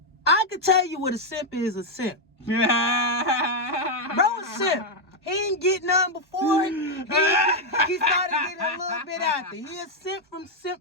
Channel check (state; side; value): normal; both; correlation 0.01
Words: I can tell you what a simp is. A simp. Bro, a simp. He ain't get none before. He started getting a little bit after. He a simp from